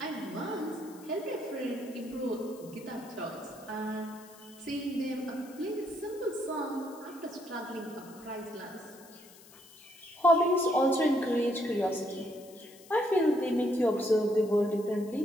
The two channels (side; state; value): left; noise; hiss, 22 dB below the sound